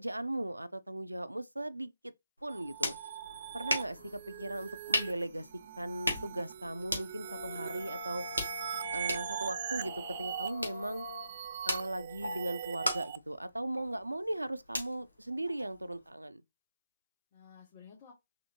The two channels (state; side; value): inverted; both; correlation -0.87